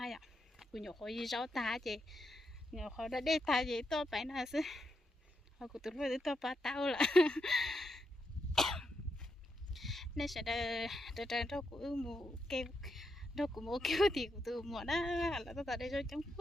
ạ, cũng nhiều khối giáo ta chị nhiều khối đã để ta gì tôi phải là chứ họ của tôi với tôi ba tao là nên sẽ đợi đâu cũng mua kêu đâu cũng mua kêu thì của tôi mua đó là tôi tại đây cho chẳng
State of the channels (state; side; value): normal; both; correlation 0.83